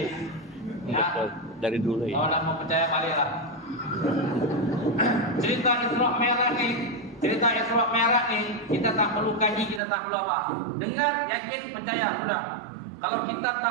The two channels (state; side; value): drops out; left; at 9.8 s